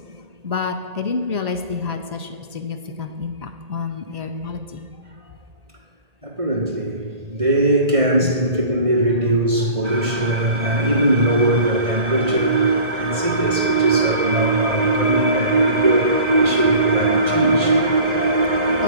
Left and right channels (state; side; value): late; left; 1.8 ms